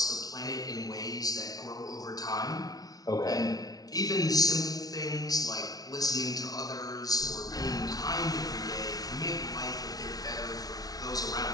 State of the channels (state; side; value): late; right; 0.18 ms